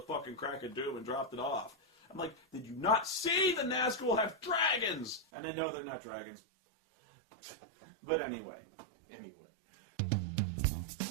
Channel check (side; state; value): left; drops out; at 5.2 s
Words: crack of doom and dropped it off. I'm like, did you not see the Nazgul have dragons? And they know they're not dragons. But anyway.